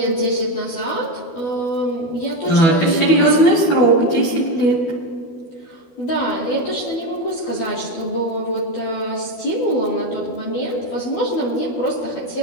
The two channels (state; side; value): late; right; 12 ms